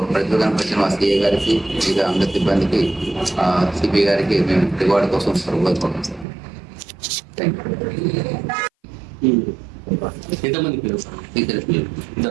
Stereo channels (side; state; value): left; drops out; at 6.2 s